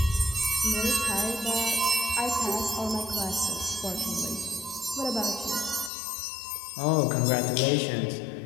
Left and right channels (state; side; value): drops out; right; at 5.9 s